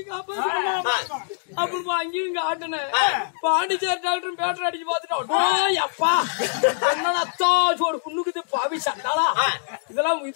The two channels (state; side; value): silent; right; digital silence